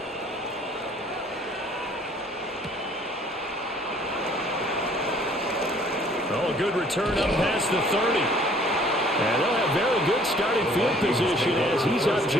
Oh, a good return up past the 30. And they'll have very good starting field position as he's up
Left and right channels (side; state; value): both; normal; correlation 0.57